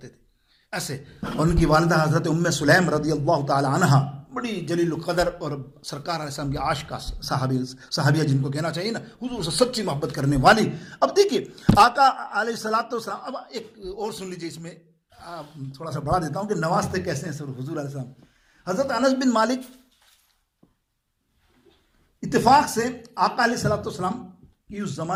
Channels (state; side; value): identical; both; correlation 1.00